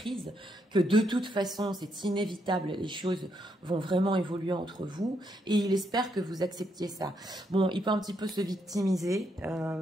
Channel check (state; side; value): normal; both; correlation 0.77